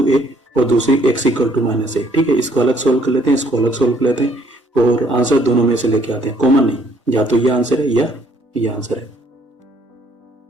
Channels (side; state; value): both; normal; correlation 0.64